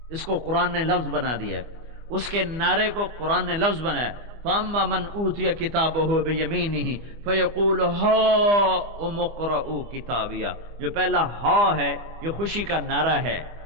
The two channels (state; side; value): late; left; 25 ms